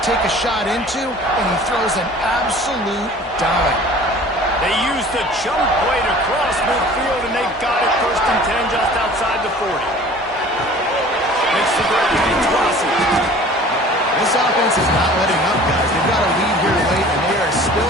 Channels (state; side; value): normal; both; correlation 0.46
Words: a shot into, and he throws an absolute dime. They used a jump play to cross midfield, and they got it 1st and 10 just outside the 40. Makes the grab. It's Rossi. This offense is not letting up, guys. They've got a lead here late, and they are still